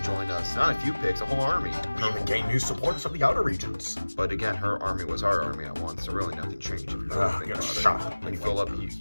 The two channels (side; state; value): both; inverted; correlation -1.00